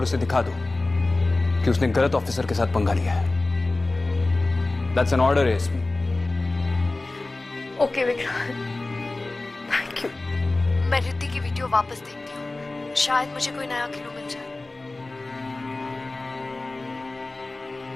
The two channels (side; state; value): right; quieter; 3.1 dB